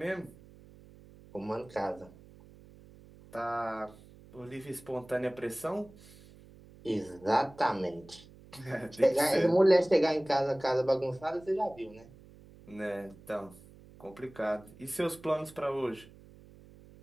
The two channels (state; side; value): noise; right; hum, 22 dB below the sound